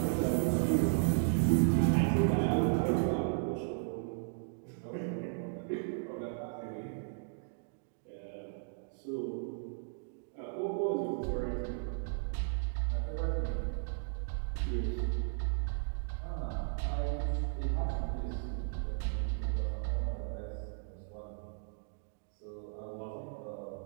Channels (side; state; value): left; silent; digital silence